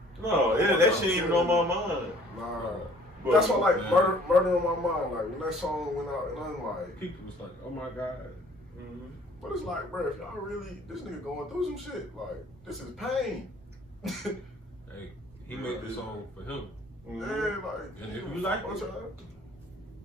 No, that shit ain't even on my mind. nah. But, That's why like man. murder on my mind. Like when that song went out, and I'm like, People was like, oh my God. Mhm. but it's like, bro, if y'all really this nigga going through some shit, like this is pain. Hey, he made the song for him. Yeah, like. And if you like it, y'all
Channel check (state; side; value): normal; both; correlation 0.55